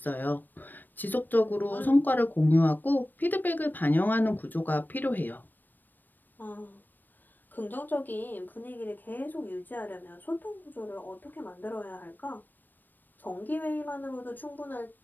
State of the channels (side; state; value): right; late; 0.090 ms